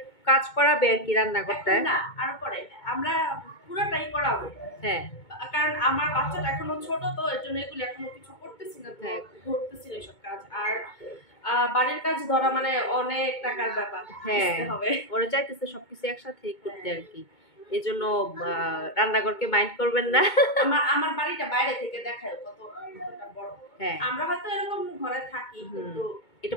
কাজ করাবে আর কি রান্নাঘরটায়। না, আর পরে আমরা পুরোটাই করাবো। হ্যাঁ, কারণ আমার বাচ্চাটা এখনো ছোট, তো এর জন্য এগুলো এখনো কিছু করতেছি না, ধরতেছি না এসব কাজ। আর বাড়ির কাজ ধরা মানে অনেক টাকার ব্যাপার। হ্যাঁ, ওরা চাইতেছে সবকিছু একসাথে করতে আর কি। এই জন্য রান্নাঘরকে মাইন্ড করবেন না। আমার বাড়িটা বাইরে থেকে দেখায় কতটা বড়। হ্যাঁ, আমরা হয়তো এরকম ঘরে থাকি, কিন্তু এটা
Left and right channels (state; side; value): late; right; 2.2 ms